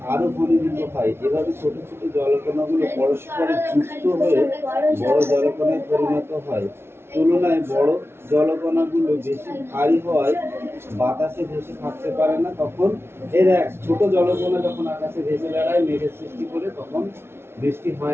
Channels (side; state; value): left; late; 0.12 ms